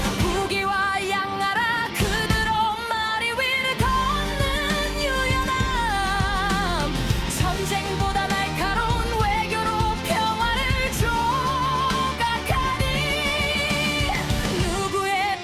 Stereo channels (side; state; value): both; identical; correlation 1.00